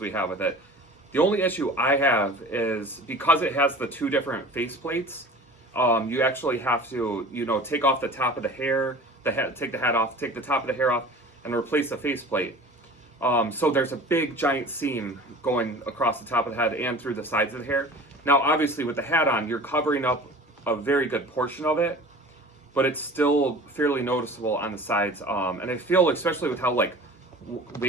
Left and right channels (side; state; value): both; normal; correlation 0.40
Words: have with it. The only issue I have is because it has the two different face plates. You actually have to, take off the top of the hair, take the hat off, take the top of the hair off, and replace the faceplate. So there's a big giant seam going across the top of the head and through the sides of the hair. Now, obviously, with the hat on, you're covering up a very good portion of it, but it's still fairly noticeable on the sides. And I feel, especially with how like